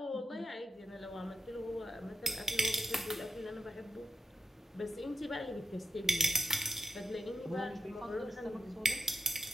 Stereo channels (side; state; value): both; normal; correlation 0.88